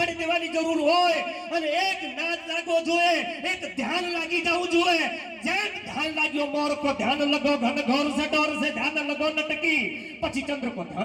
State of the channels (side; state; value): both; identical; correlation 1.00